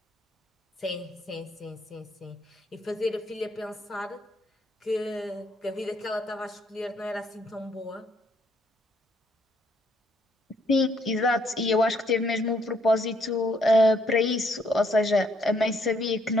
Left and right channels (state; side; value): normal; both; correlation 0.69